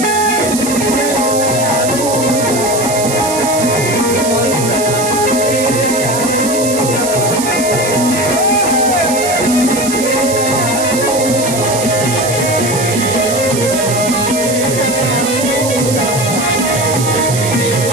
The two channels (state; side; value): noise; right; hiss, 5 dB below the sound